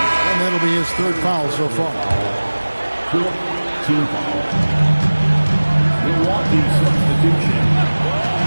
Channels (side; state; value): both; inverted; correlation -1.00